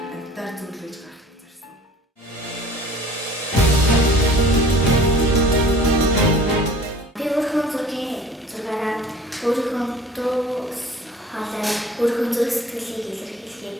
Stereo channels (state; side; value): normal; both; correlation 0.47